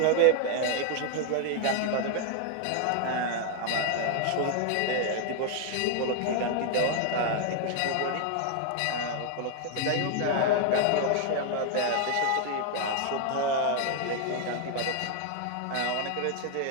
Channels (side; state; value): both; different; correlation 0.00